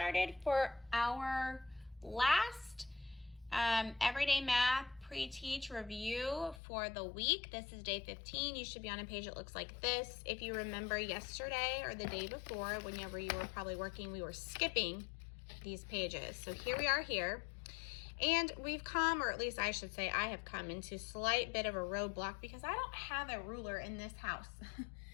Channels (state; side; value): drops out; right; at 6.6 s